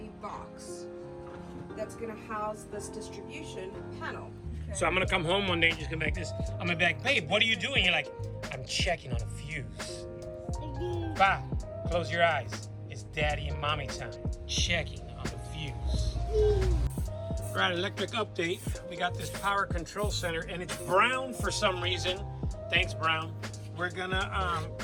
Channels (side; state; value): both; identical; correlation 1.00